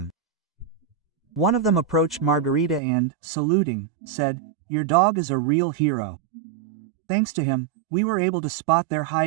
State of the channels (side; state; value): left; drops out; at 2.8 s